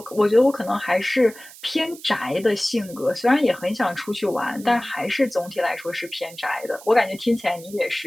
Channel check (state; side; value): noise; right; hiss, 19 dB below the sound